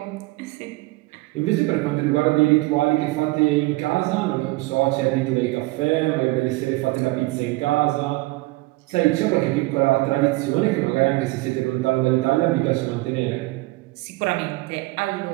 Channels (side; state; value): left; quieter; 21.4 dB